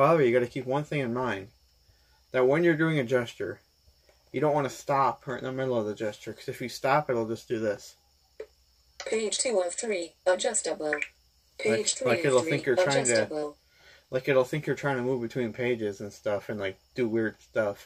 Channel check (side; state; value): both; identical; correlation 1.00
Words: you got to keep one thing in mind: that when you're doing a gesture, you don't want to stop right in the middle of the gesture, because if you stop, it'll just do this. Page 2 of 3. Adjustable. Page 3 like of it'll 3. think you're trying to. Adjustable. Like, it'll think you're trying to move between pages and stuff and, like, do weird